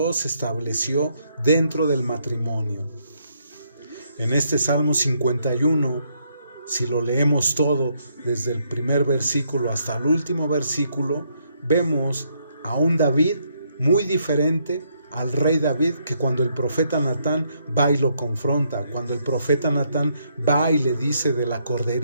estableció dentro del matrimonio. En este Salmo 51, si lo leemos todo, desde el primer versículo hasta el último versículo, vemos a un David muy diferente al rey David, que cuando el profeta Natán va y lo confronta, cuando el profeta Natán va y le dice de la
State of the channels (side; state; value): both; inverted; correlation -0.74